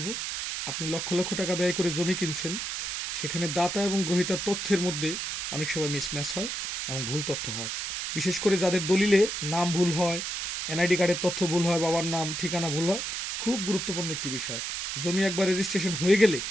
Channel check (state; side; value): noise; right; hiss, 3 dB below the sound